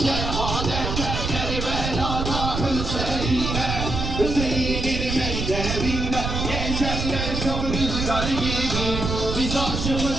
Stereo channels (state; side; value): noise; right; rumble, 3 dB below the sound